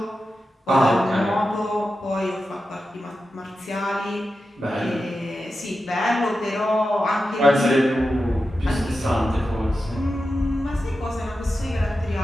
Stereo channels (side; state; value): both; normal; correlation 0.91